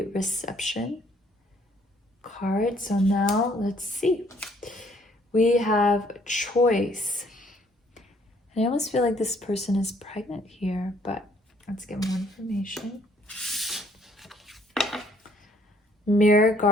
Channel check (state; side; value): normal; both; correlation 0.63